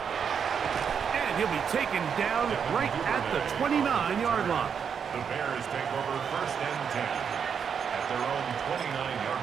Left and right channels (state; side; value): quieter; left; 7.0 dB